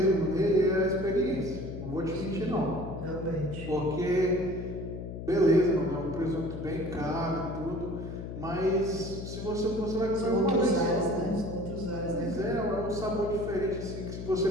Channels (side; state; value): left; noise; hum, 8 dB below the sound